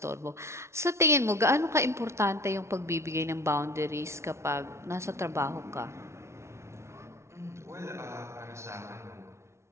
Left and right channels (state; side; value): late; left; 0.13 ms